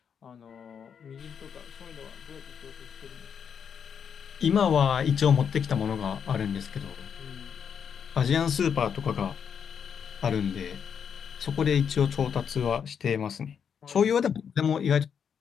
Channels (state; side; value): quieter; right; 7.4 dB